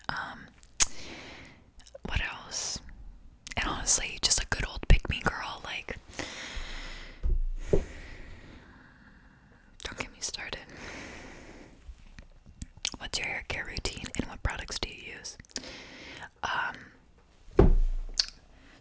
What else? And honestly, just a good old pick me girl, like, don't get me started. What's your hair care routine, and what products do you use?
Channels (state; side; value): identical; both; correlation 1.00